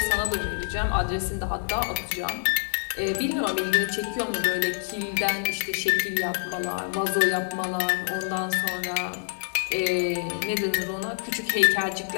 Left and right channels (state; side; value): silent; right; digital silence